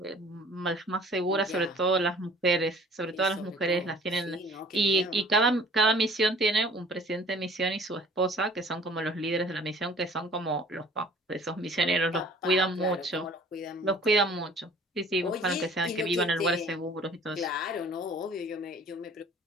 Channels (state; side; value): normal; both; correlation 0.51